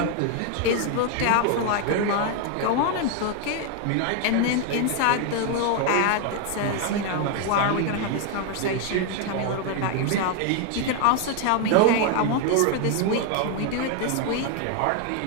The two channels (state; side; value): different; both; correlation 0.01